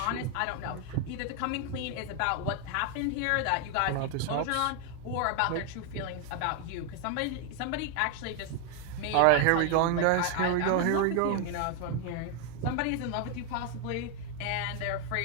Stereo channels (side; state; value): both; different; correlation 0.01